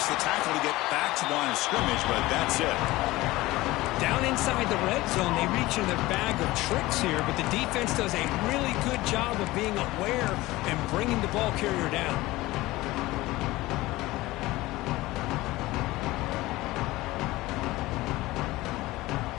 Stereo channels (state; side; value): quieter; right; 18.9 dB